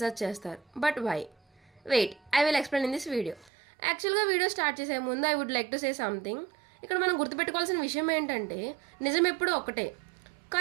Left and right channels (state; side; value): drops out; left; at 3.5 s